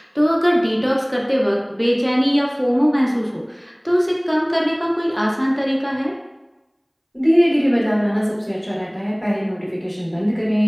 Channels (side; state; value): both; identical; correlation 1.00